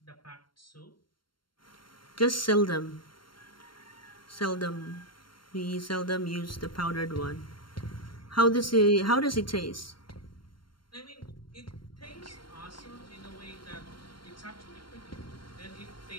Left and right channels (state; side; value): late; right; 0.72 ms